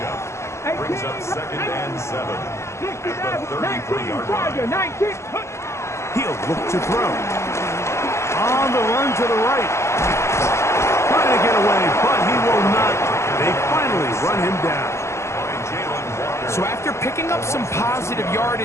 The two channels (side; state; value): right; late; 0.13 ms